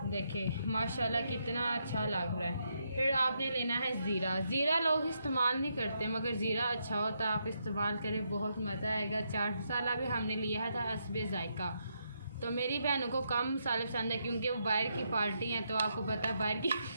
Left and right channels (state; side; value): inverted; both; correlation -0.79